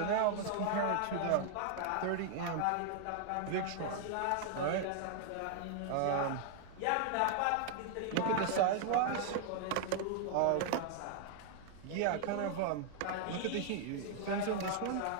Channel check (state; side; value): different; both; correlation 0.00